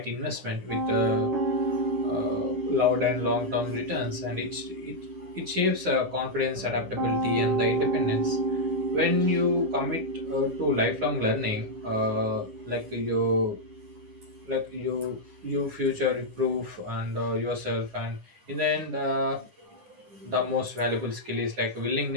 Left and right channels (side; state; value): left; late; 9.6 ms